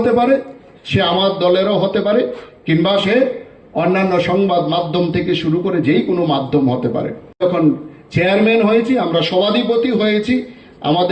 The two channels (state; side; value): identical; both; correlation 1.00